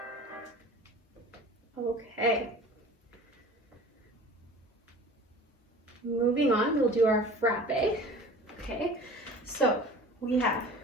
Okay. Moving on, we'll do our frappe. Okay, so we have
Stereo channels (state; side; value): normal; both; correlation 0.42